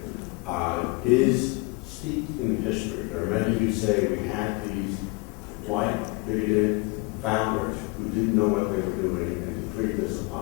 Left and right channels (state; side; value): quieter; right; 27.0 dB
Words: is steeped in history. There are many who say we had these white, bigoted founders who didn't know what they were doing and decreed this